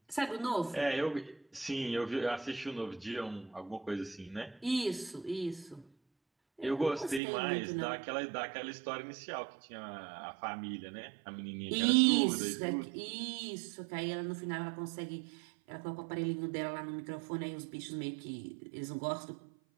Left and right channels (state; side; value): drops out; left; at 7.2 s